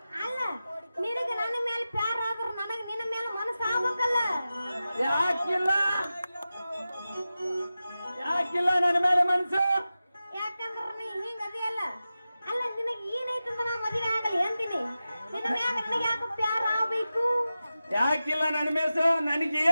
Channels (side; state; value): both; inverted; correlation -0.94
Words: ಅಲ್ಲ ನಿನಗ ನನ್ನ ಮೇಲೆ ಪ್ಯಾರ ಆದ್ರ ನನಗ ನಿನ್ನ ಮೇಲೆ ಮನಸ್ಸು ಆಗ್ಬೇಕಲ್ಲ. ಯಾಕಿಲ್ಲ ಯಾಕಿಲ್ಲ ನನ್ನ ಮೇಲೆ ಮನಸ್ಸು? ಯಾಕಂದ್ರ ನೀ ಹಿಂಗ ಅದಿಯಲ್ಲ. ಅಲ್ಲ ನಿನಗೆ ಏನೈತೆ ಅಂತ ನಾ ಮದುವೆ ಆಗಲಿ ಅಂತೀನಿ. ನಿನ್ನ ಮ್ಯಾಗ ನನಗೆ ಯಾಕೆ ಪ್ಯಾರ ಆಗ್ಬೇಕು? ಯಾಕಿಲ್ಲ ನನ್ನ ಮೇಸು?